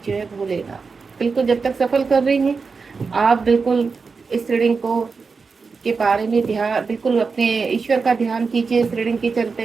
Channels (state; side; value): quieter; left; 4.8 dB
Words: जय भोलेनाथ। बिल्कुल, जब तक सफल कर रही हैं आप, बिल्कुल इस रीडिंग को के बारे में ध्यान, बिल्कुल अपने ईश्वर का ध्यान कीजिए इस रीडिंग के